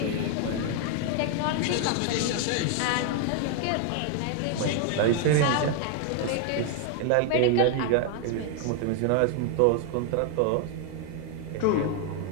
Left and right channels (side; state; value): both; different; correlation 0.00